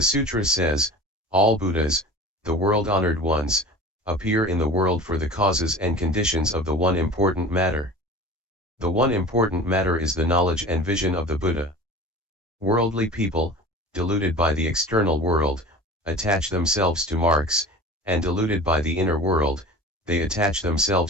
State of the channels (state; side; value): normal; both; correlation 0.37